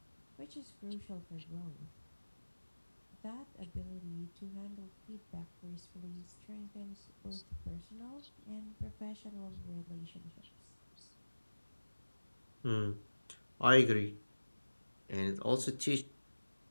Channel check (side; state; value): both; inverted; correlation -1.00